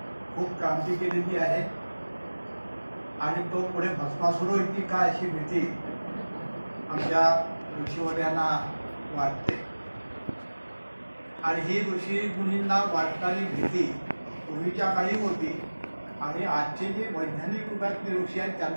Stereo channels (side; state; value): both; inverted; correlation -1.00